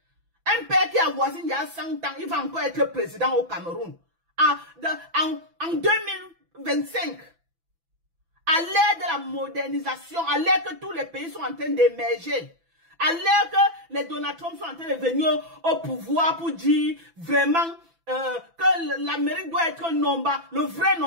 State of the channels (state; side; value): late; left; 6.0 ms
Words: Un père qui avoisine il y a 100 ans, il va encore être président au Cameroun. En 2025. À l'ère de la modernisation, à l'ère que tous les pays sont en train d'émerger. À l'ère que les Donald Trump sont en train de venir au pouvoir pour dire vraiment que l'Amérique doit être Nomba, le vrai